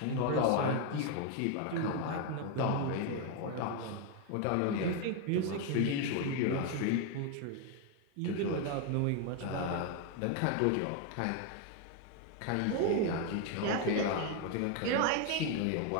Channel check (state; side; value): different; both; correlation 0.01